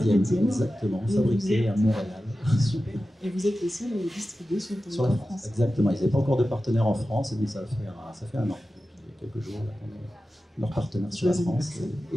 exactement, fabriquée à Montréal. Super. Et vous êtes les seuls à les distribuer sur le territoire la France. Exactement, ils n'avaient pas encore de partenaire en France, et donc ça fait un an. Depuis quelques jours, là, on est leur partenaire sur la France.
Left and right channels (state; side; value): normal; both; correlation 0.94